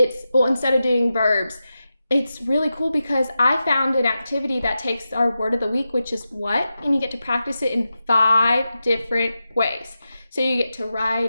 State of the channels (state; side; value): inverted; both; correlation -0.91